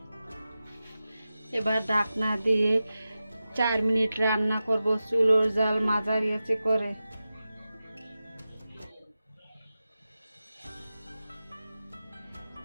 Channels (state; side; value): inverted; both; correlation -0.93